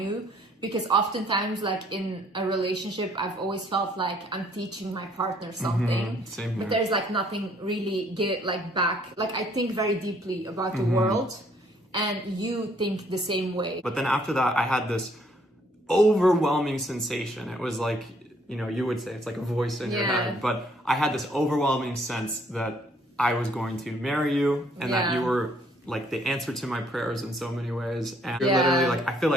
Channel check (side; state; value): both; normal; correlation 0.64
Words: Because oftentimes, like, in a relationship, I've always felt like I'm teaching my partner something. Same here. But there's like nothing really back. Like, I think very deeply about the world, and you think the same way. But then after that, I had this overwhelming sensation. It was like, you would say it's like a voice in your head. But I had this overwhelming sense that I was going to marry you, and that you were like the answer to my prayers in so many ways. And you're literally like, I feel